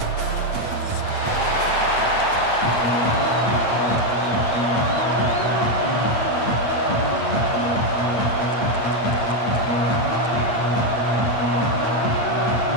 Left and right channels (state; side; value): late; right; 8.7 ms